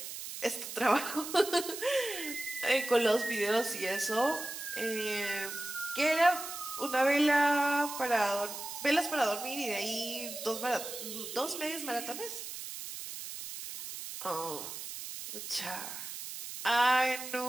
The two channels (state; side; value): noise; right; hiss, 8 dB below the sound